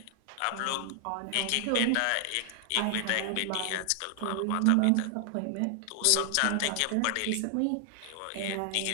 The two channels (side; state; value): both; different; correlation 0.00